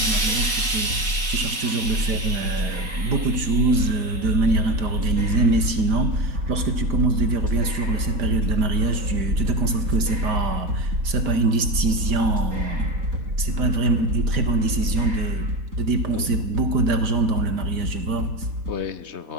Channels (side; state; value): left; late; 4.1 ms